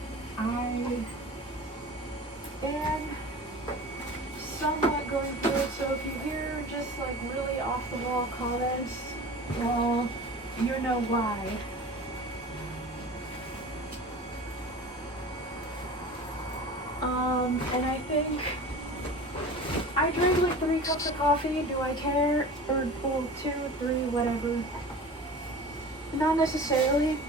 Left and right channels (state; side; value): normal; both; correlation 0.37